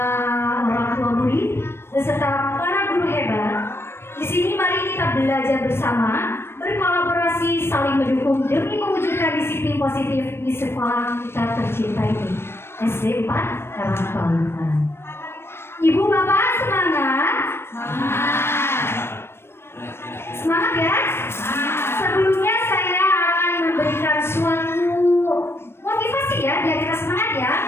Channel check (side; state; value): right; late; 0.12 ms